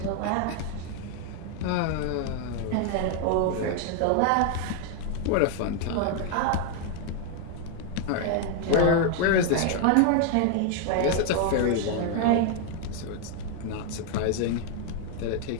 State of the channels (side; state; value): both; different; correlation 0.01